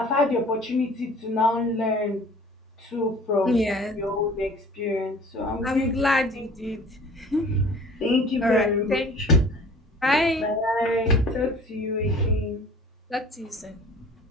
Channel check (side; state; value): both; normal; correlation 0.47